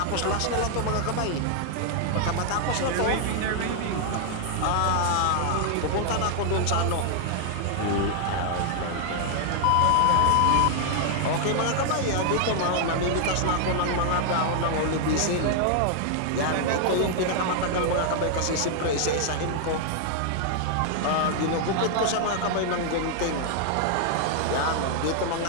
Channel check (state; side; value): different; both; correlation 0.00